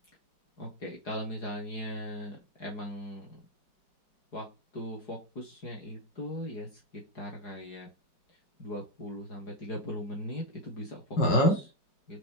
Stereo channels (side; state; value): right; late; 4.8 ms